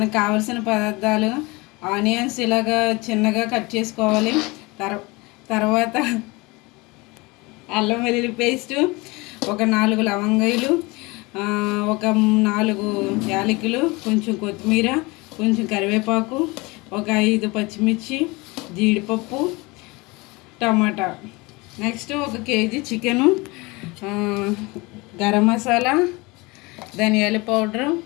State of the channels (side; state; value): right; quieter; 24.6 dB